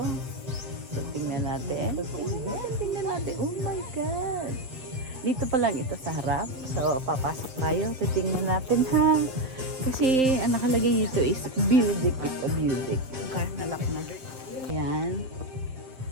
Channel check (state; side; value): late; left; 7.7 ms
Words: So tingnan natin. Tingnan natin. Oh my God! Dito pa lang ito sa harap. So, papasok tayo. Titingnan natin ha. Kasi, ang nakalagay dito is Building. Ito, Building. Yung car nalak na. Ayan.